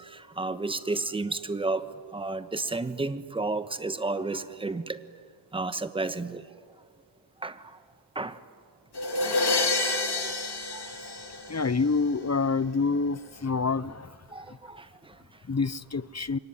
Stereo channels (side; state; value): both; normal; correlation 0.16